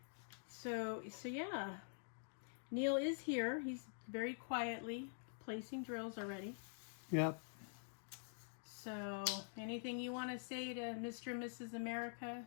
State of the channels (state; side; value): silent; right; digital silence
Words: So yeah, Neil is here. He's very quietly placing drills already. Yep. So anything you want to say to Mr. and Mrs. America,